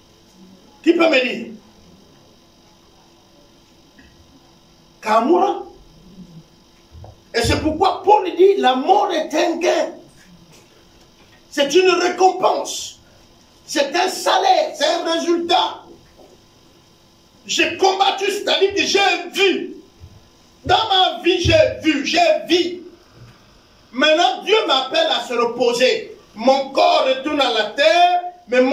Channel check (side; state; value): both; identical; correlation 1.00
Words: Qui peut me dire? Kamura. Et c'est pourquoi Paul dit, la mort est un gain. C'est une récompense. C'est un salaire, c'est un résultat. J'ai combattu, c'est-à-dire que j'ai vu. Dans ma vie, j'ai vu, j'ai vu. Maintenant, Dieu m'appelle à se reposer. Mon corps retourne à la terre, mais